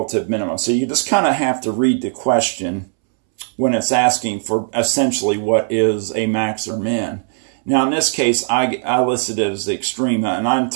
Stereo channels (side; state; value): left; silent; 66 dB below the other